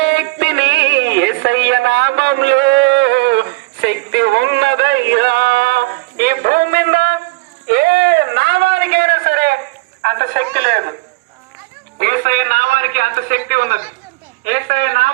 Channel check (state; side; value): quieter; left; 23.5 dB